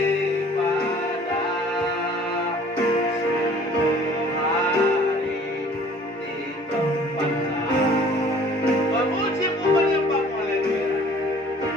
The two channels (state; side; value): normal; both; correlation 0.52